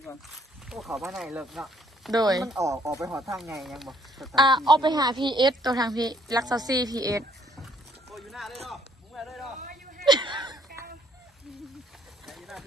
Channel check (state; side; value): normal; both; correlation 0.65